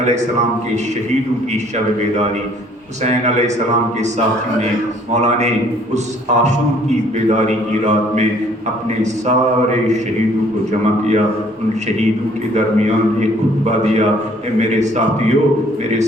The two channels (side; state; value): both; normal; correlation 0.59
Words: السلام کے شہیدوں کی شب بیداری، حسین علیہ السلام کے ساتھیوں نے، مولا نے اس عاشور کی بیداری کی رات میں اپنے سارے شہیدوں کو جمع کیا، ان شہیدوں کے درمیان ایک خطبہ دیا، اے میرے ساتھیوں، میرے